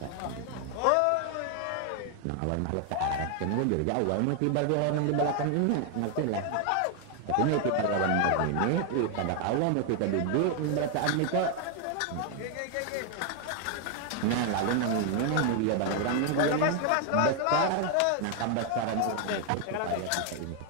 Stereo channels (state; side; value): different; both; correlation 0.00